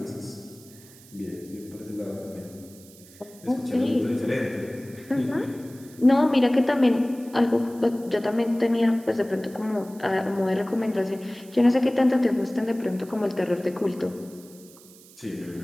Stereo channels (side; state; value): right; noise; hiss, 23 dB below the sound